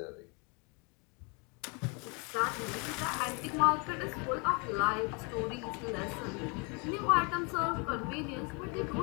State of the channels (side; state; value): right; quieter; 32.7 dB